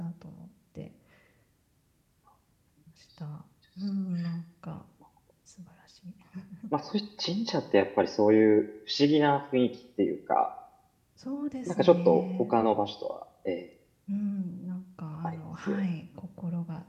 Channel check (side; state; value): both; identical; correlation 1.00